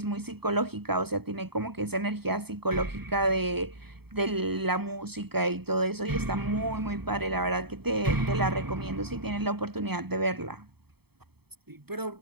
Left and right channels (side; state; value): left; late; 0.97 ms